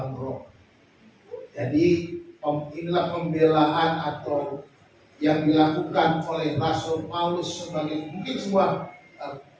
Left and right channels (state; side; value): identical; both; correlation 1.00